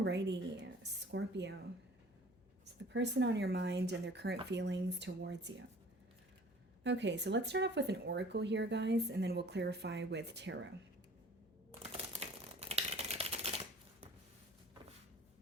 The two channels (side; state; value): left; noise; hum, 29 dB below the sound